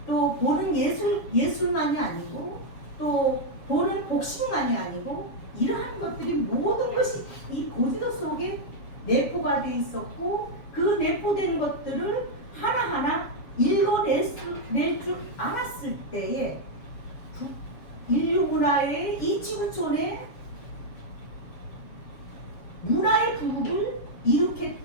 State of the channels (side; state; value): right; late; 7.2 ms